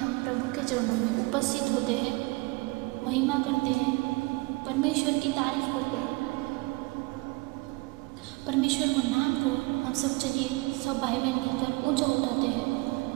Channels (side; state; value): left; quieter; 25.1 dB